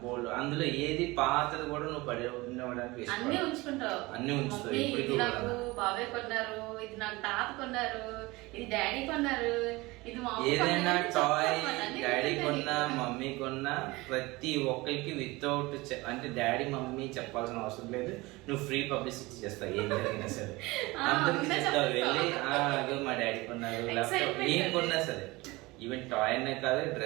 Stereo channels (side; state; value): left; quieter; 22.0 dB